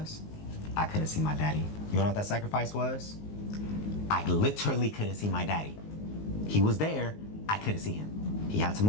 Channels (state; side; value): late; right; 19 ms